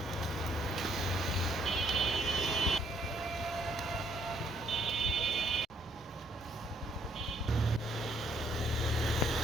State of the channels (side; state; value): both; normal; correlation 0.68